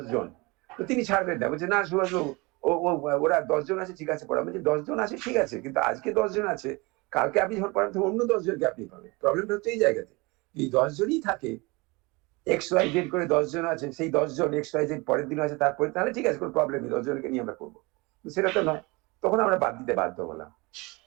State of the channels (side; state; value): left; quieter; 25.6 dB